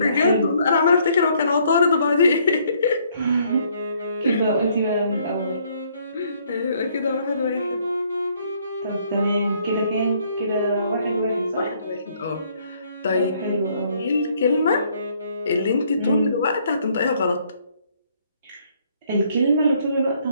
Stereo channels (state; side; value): inverted; both; correlation -0.66